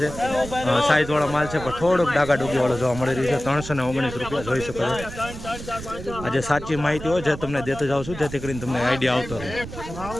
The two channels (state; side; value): noise; right; rumble, 11 dB below the sound